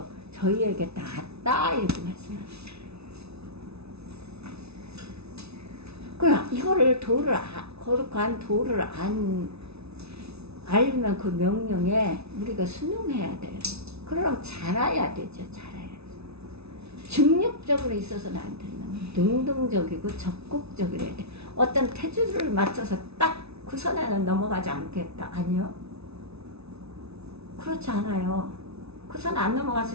저희에게 낫다 이렇게 말씀합니다. 그러나 이거를 거룩한 도를 안 알면 그 명령에 우리가 순응해야 돼요. 그럼 잘해야 되죠. 잘해야 돼. 중립적으로 있어서는 안 된다. 능동적이고 적극적이어야 돼. 어떤 태주를 맞춰서 딱 그 선에는 넘어가지 않겠다. 아니요. 그렇지 않아요. 그 선 안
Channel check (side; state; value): left; late; 0.80 ms